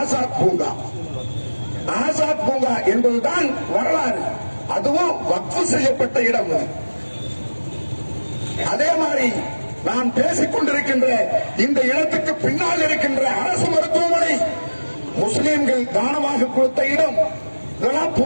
பூங்கா. ஆசாத் பூங்கா என்பதுதான் வரலாறு. அதுவும் வக்ஃப் செய்யப்பட்ட இடம். அதே மாதிரி நான் பேசிக் கொண்டிருக்கின்ற இந்த இடத்துக்கு பின்னால் இருக்கின்ற அரசு மருத்துவமனை முஸ்லீம்கள் தானமாக கொடுத்த இடம். இதெல்லாம்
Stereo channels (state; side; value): inverted; both; correlation -1.00